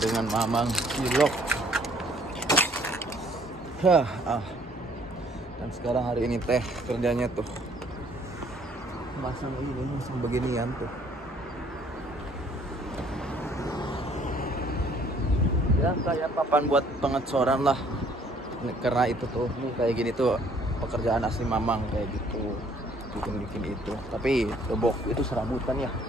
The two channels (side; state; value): both; normal; correlation 0.61